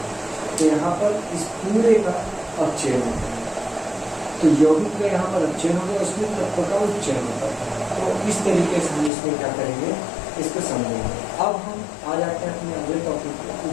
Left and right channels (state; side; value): drops out; right; at 9.1 s